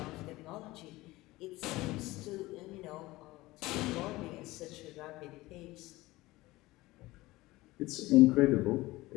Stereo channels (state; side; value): quieter; right; 19.3 dB